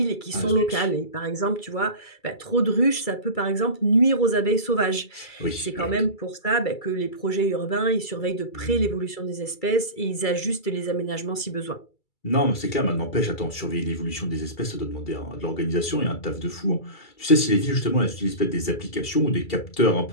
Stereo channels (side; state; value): right; late; 2.3 ms